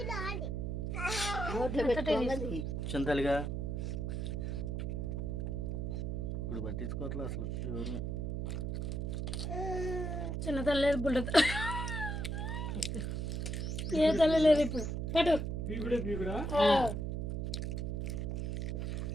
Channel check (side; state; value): right; noise; hum, 1 dB below the sound